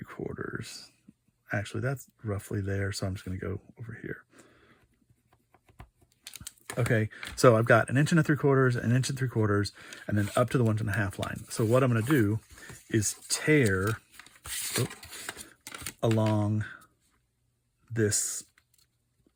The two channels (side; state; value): both; identical; correlation 1.00